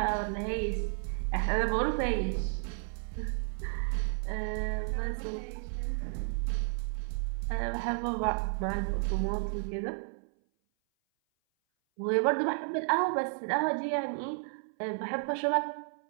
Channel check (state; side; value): silent; left; 56 dB below the other